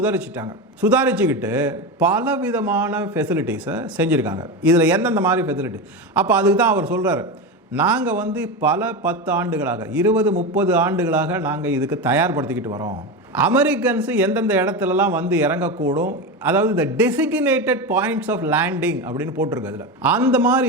சுதாரிச்சுக்கிட்டு பல விதமான ஃபெசிலிட்டிஸை செஞ்சுருக்காங்க. இதில் எந்தெந்த மாதிரி ஃபெசிலிட்டி, அப்போ அதுக்கு தான் அவர் சொல்கிறார், நாங்கள் பல 10 ஆண்டுகளாக, 20, 30 ஆண்டுகளாக நாங்கள் இதுக்கு தயார்படுத்திக்கிட்டு வரோம். அமெரிக்கன்ஸு எந்தெந்த இடத்துலலாம் இறங்கக்கூடும், அதாவது இந்த டெசிக்னேட்டட் பாயிண்ட்ஸ் ஆஃப் லேண்டிங் அப்படின்னு போட்டிருக்கு. அதில் அந்த மாதிரி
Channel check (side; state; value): both; normal; correlation 0.19